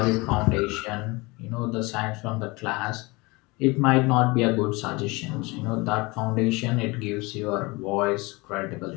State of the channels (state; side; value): quieter; right; 24.8 dB